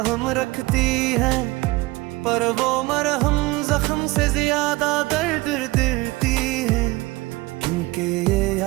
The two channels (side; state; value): left; quieter; 21.3 dB